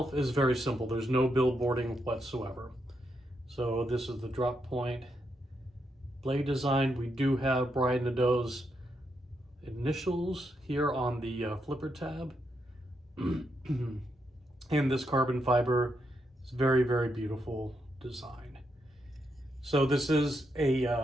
is very simple. There's no billboarding whatsoever. So this is the drop point blade design. We do have Brian Nadeau's initials here on the flipper tab. And this carbon fiber is very, very beautiful design. So this is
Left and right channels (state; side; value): normal; both; correlation 0.81